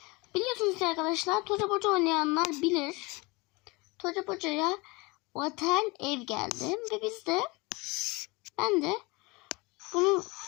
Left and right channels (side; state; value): right; quieter; 25.7 dB